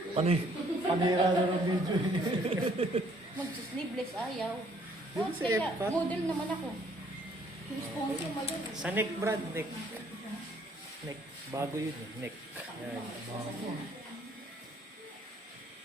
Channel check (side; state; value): both; normal; correlation 0.63